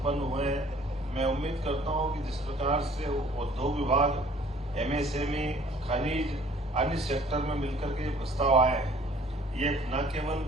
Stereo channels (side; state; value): both; normal; correlation 0.54